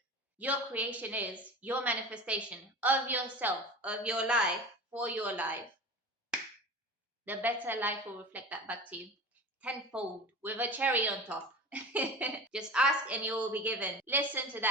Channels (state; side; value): normal; both; correlation 0.34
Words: your creation is, your manifestation of yourself, of your life, for your life, the better life will reflect that back to you tenfold with a cherry on top. Just ask and you will be given. Listen to